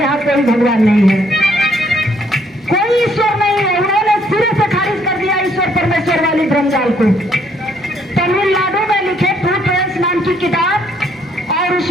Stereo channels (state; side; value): normal; both; correlation 0.67